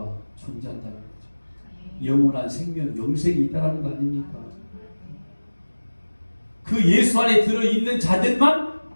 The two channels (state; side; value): inverted; both; correlation -1.00